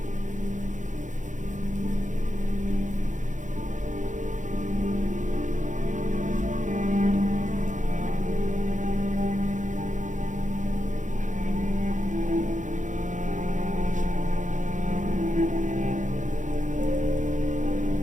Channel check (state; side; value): late; left; 0.36 ms